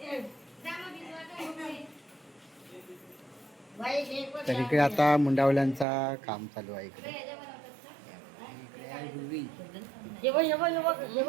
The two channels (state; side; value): drops out; left; at 5.9 s